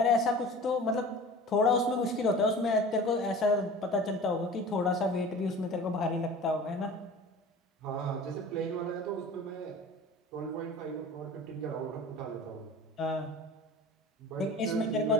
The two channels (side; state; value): both; normal; correlation 0.39